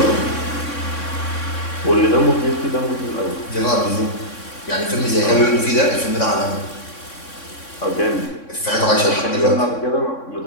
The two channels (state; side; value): late; right; 3.6 ms